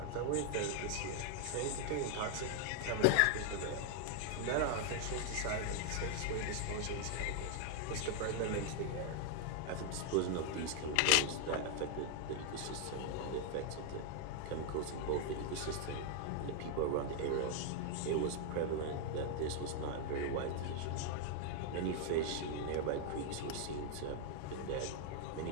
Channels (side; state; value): both; different; correlation 0.00